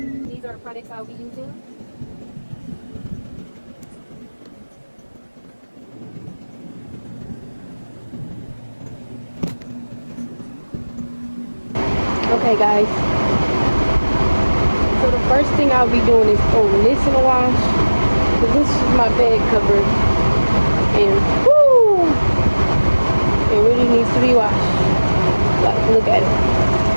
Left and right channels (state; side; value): inverted; both; correlation -1.00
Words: These are the products I'll be using. Okay guys, so the first thing I'll be doing is throwing this in the wash, because this is my bed cover, and whoo, it really needs to be washed. Like, look at it,